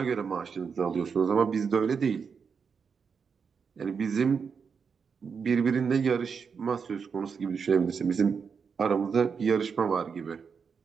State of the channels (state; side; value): quieter; left; 6.0 dB